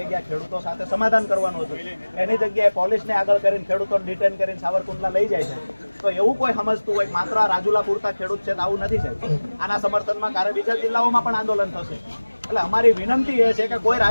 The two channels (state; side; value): inverted; both; correlation -1.00